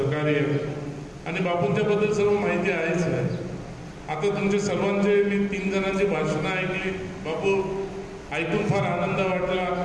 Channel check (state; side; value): identical; both; correlation 1.00